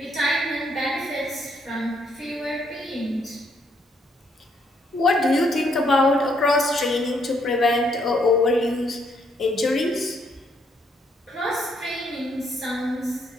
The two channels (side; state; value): both; normal; correlation 0.71